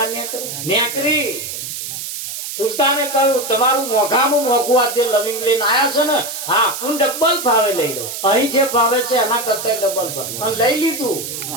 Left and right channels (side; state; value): right; noise; hiss, 7 dB below the sound